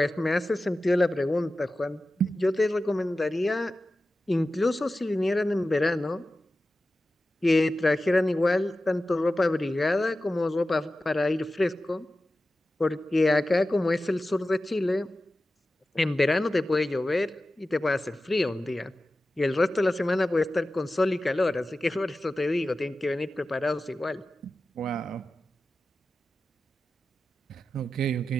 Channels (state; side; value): normal; both; correlation 0.94